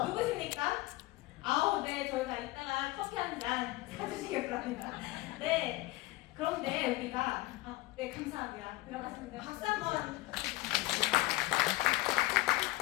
누구십니까? 네. 저희가 이따가 커피 한 잔 사주시길 바랍니다. 네. 그런데 우리가 네, 감사합니다. 들어가시면 돼요. 박수 한번.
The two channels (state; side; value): quieter; right; 20.3 dB